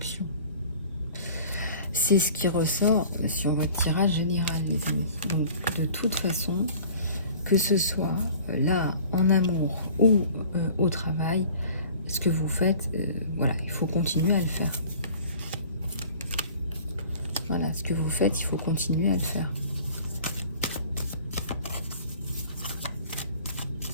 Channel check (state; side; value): inverted; both; correlation -0.47